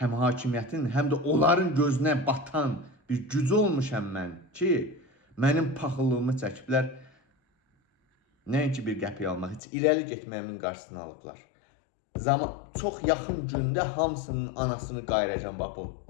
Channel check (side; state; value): right; drops out; at 9.6 s